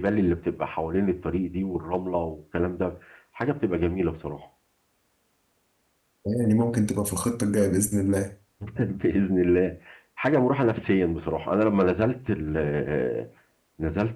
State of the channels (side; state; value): both; identical; correlation 1.00